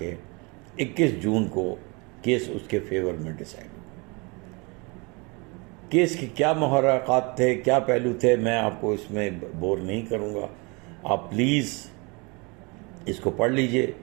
21 जून को केस उसके फेवर में डिसाइड। केस के क्या मुहर्रकात थे, क्या पहलू थे, मैं आपको इसमें बोर नहीं करूँगा। आप प्लीज़ इसको पढ़ लीजिए।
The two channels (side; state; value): left; quieter; 29.1 dB